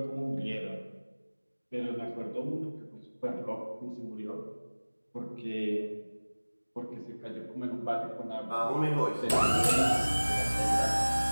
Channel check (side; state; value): both; inverted; correlation -1.00